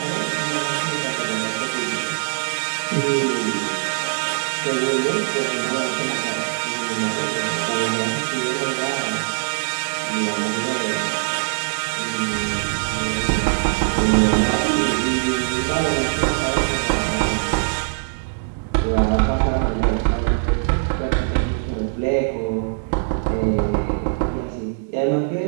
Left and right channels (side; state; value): left; silent; 64 dB below the other